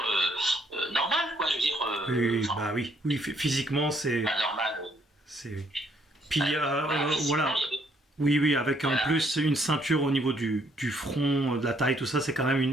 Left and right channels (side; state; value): both; normal; correlation 0.68